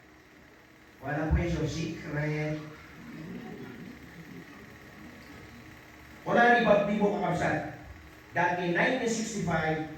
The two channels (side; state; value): both; identical; correlation 1.00